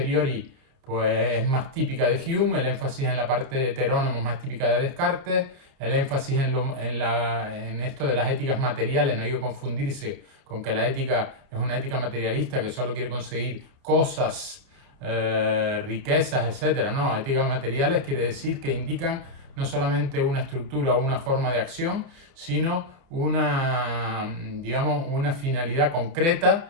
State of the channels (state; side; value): late; left; 30 ms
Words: pues es más típica de Hume, el énfasis en la parte heterónoma es más típica de Descartes, el énfasis en esto de las éticas materiales, no hay que confundirse con que la ética es una ética materialista que solo quiere conseguir cosas, riquezas, etc. No, éticas materiales quiere decir que indican no solamente una estructura o una forma de acción, sino digamos, una finalidad concreta